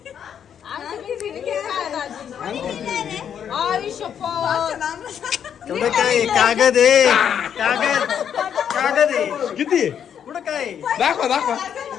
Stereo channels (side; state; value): right; quieter; 8.6 dB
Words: तेवढं काय कागद आहे कागद आहे किती आहे? कुठं काय